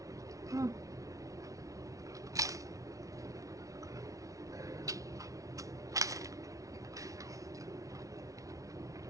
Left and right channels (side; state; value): left; late; 0.16 ms